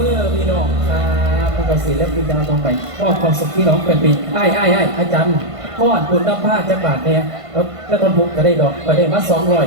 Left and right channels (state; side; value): late; left; 1.5 ms